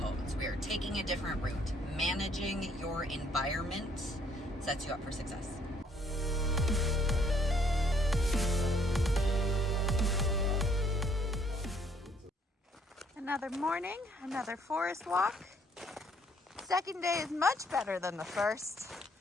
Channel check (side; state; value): both; normal; correlation 0.65